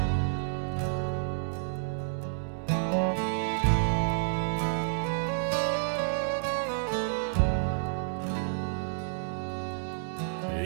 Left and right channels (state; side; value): silent; left; digital silence